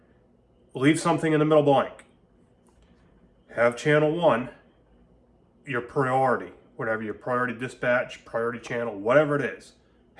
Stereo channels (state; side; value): identical; both; correlation 1.00